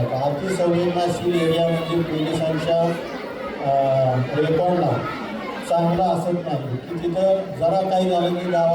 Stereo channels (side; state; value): both; identical; correlation 1.00